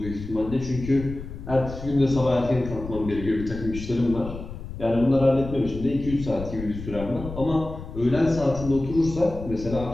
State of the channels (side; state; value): left; noise; rumble, 10 dB below the sound